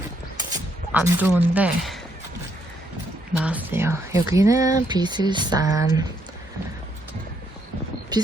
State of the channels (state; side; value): normal; both; correlation 0.73